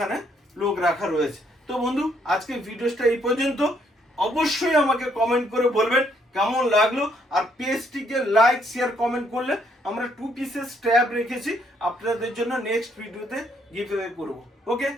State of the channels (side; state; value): both; normal; correlation 0.70